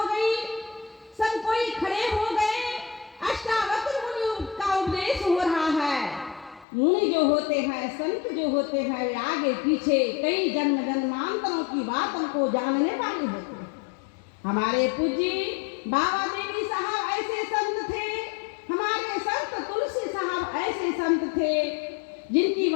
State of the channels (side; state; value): right; drops out; at 6.7 s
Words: गई, सब कोई खड़े हो गए। अष्टावक्र मुनि का उपदेश हो रहा है। मुनि जो होते हैं, संत जो होते हैं, वे आगे पीछे कई जन्म जन्मांतरों की बातों को जानने वाले होते हैं। हमारे पूज्य बाबा देवी साहब ऐसे संत थे, हमारे संत तुलसी साहब ऐसे संत थे, जिनकी